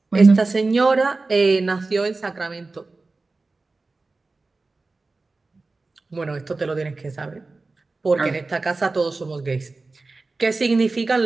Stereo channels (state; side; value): quieter; left; 3.5 dB